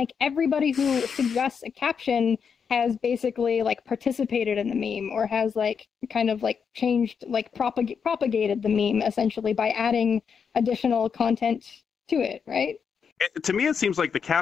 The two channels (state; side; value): quieter; right; 6.5 dB